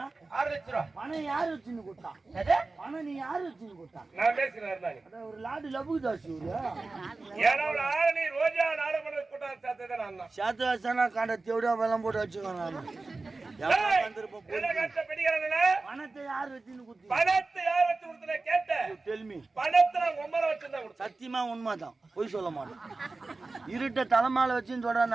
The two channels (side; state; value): left; quieter; 3.5 dB